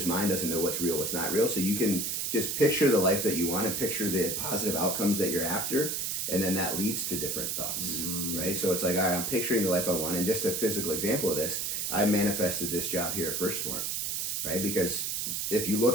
mind doesn't know what's real, what's not real. So you can just picture the life that you want and picture the positive outcomes that you're after. And then that leads to different thoughts, right? So it's like, all right, I'm picturing the life I want. And just a physical example of this, I manifested this job here at First Form, right? Because if you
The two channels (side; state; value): right; noise; hiss, 1 dB below the sound